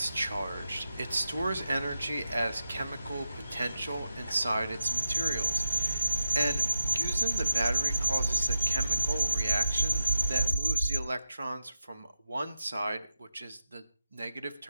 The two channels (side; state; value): both; inverted; correlation -0.91